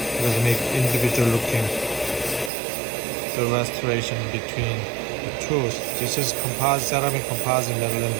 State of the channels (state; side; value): drops out; left; at 2.5 s